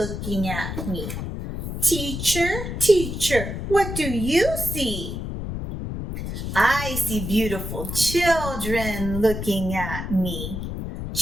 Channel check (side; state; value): left; noise; rumble, 5 dB below the sound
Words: at me. Teacher, what do you see? I see beautiful children looking at me.